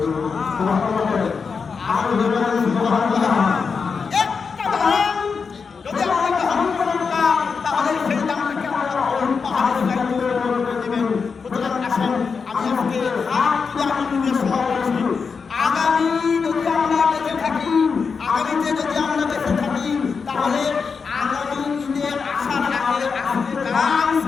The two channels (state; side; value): quieter; right; 5.4 dB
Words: সুবহানাল্লাহ। আর বলেন সুবহানাল্লাহ। একটা দান যদি আমরা গ্রহণ করি না তাহলে সেই দানটাকে আল্লাহ পাহাড়ের কাছে করে দিবেন। সুতরাং আসুন আমি আজকে হাত তুলে আপনাদের সভা করছি, আগামী যদি আমরা বেঁচে থাকি, আগামীতে যদি আমরা বেঁচে থাকি তাহলে আগামী ঈদের আসার আগে আজকে যা